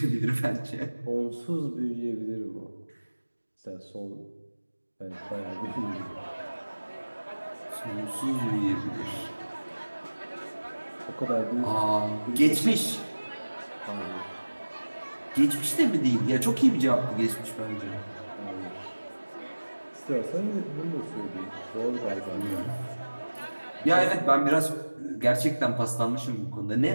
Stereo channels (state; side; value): inverted; both; correlation -1.00